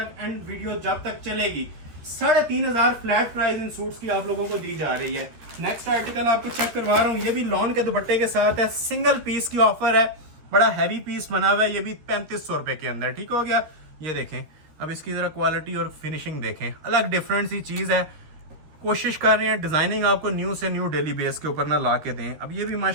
एंड वीडियो जब तक चलेगी 3500 फ्लैट प्राइस इन सूट्स की आप लोगों को दी जा रही है। नेक्स्ट आर्टिकल आपको चेक करवा रहा हूँ, ये भी लॉन के दुपट्टे के साथ है, सिंगल पीस की ऑफर है, बड़ा हैवी पीस बना हुआ है, ये भी 3500 रुपए के अंदर, ठीक हो गया। ये देखें, अब इसकी जरा क्वालिटी और फिनिशिंग देखें, अलग डिफरेंट सी चीज है। कोशिश कर रहे हैं डिजाइनिंग आपको न्यू से न्यू डेली बेस के ऊपर ना ला के दें। अब ये भी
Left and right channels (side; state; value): left; late; 13 ms